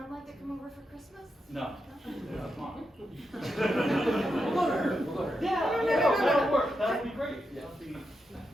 like to come over for Christmas? No. Yeah, come on. We'll go to her. We'll go to her. Yeah, that'll work. That'll be great. Yeah. That'll be.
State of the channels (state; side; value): normal; both; correlation 0.85